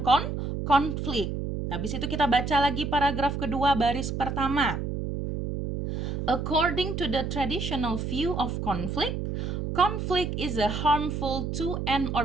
konflik. Habis itu kita baca lagi paragraf kedua baris pertama. According to the traditional view of conflict is a harmful to an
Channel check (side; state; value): right; noise; hum, 3 dB below the sound